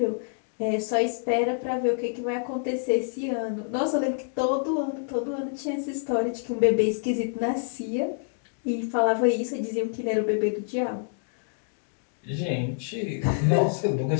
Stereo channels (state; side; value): silent; right; digital silence